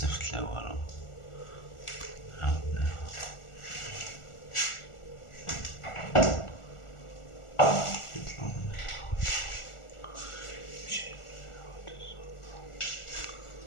لا والو عاودناها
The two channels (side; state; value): right; late; 1.4 ms